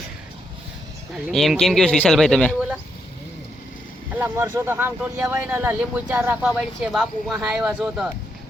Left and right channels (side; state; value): both; normal; correlation 0.79